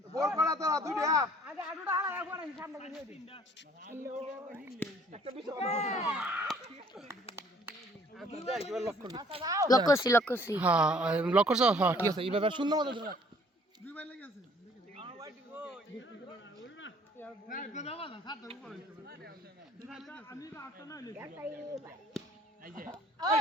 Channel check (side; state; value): both; normal; correlation 0.57